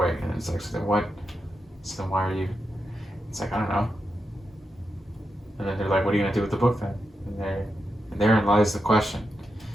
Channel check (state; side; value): normal; both; correlation 0.87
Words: And it's like, so then what? So then why are you? It's like, I don't know. And then they're like, what are you gonna do with the book then? And therein lies the question.